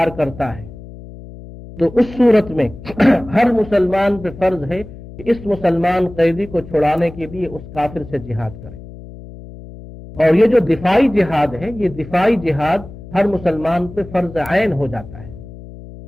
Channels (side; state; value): left; noise; hum, 16 dB below the sound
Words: کرتا ہے تو اس صورت میں ہر مسلمان پہ فرض ہے کہ اس مسلمان قیدی کو چھڑانے کے لیے اس کافر سے جہاد کرے۔ اور یہ جو دفاعی جہاد ہے، یہ دفاعی جہاد ہر مسلمان پہ فرض عین ہو جاتا ہے۔